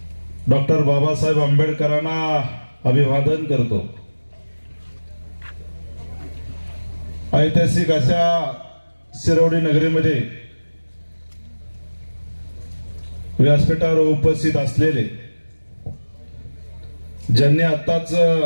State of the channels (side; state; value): both; inverted; correlation -1.00